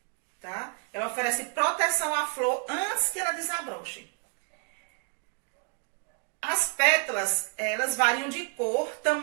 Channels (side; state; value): left; quieter; 38.4 dB